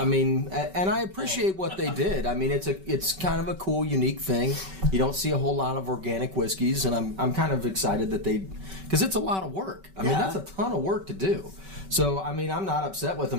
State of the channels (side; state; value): left; late; 5.2 ms